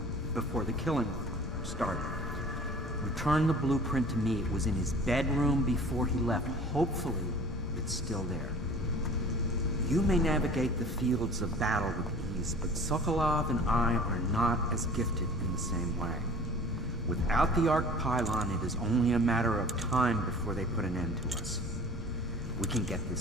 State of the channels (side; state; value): both; normal; correlation 0.45